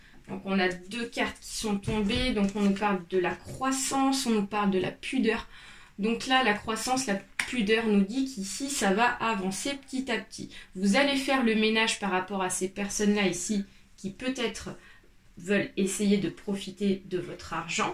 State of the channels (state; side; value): identical; both; correlation 1.00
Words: Donc on a deux cartes qui sont tombées. Donc on nous parle de la croissance, on nous parle de la pudeur. Donc là, la croissance, la pudeur nous dit qu'ici, ça va avancer petit à petit. Vous allez faire le ménage par rapport à ces personnes-là ici qui peut-être veulent essayer de profiter de votre argent